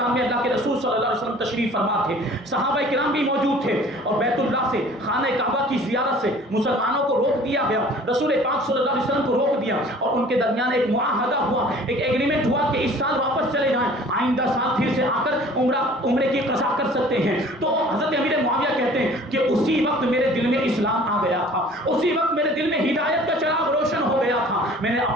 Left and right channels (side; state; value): both; normal; correlation 0.49